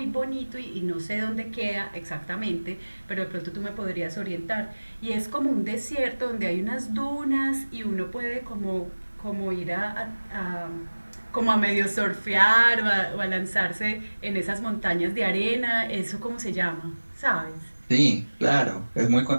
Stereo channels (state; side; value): inverted; both; correlation -1.00